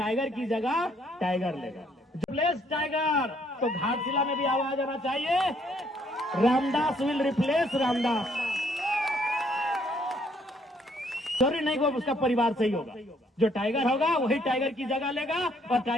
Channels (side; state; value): both; normal; correlation 0.67